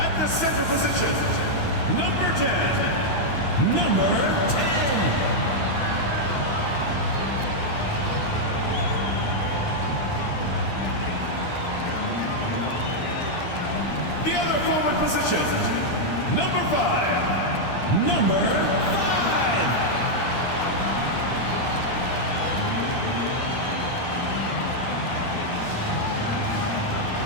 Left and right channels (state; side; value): late; right; 9.7 ms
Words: the center position, number 10, number 10. The other forward position, number 5, number 5.